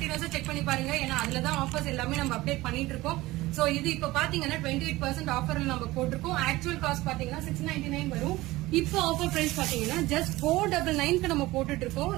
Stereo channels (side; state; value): left; quieter; 18.8 dB